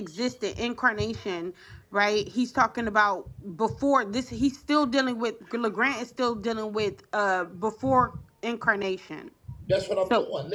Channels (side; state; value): both; identical; correlation 1.00